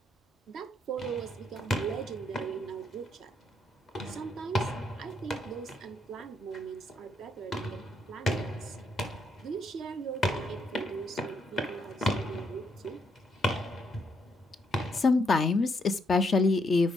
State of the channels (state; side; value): normal; both; correlation 0.75